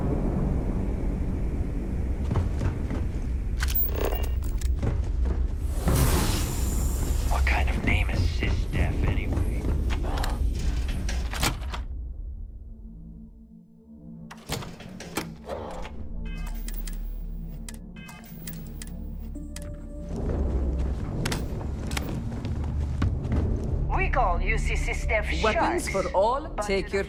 What kind of name is SysDef anyway? We call UC SysDef Weapons sharks, for all, but take to your the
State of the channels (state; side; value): identical; both; correlation 1.00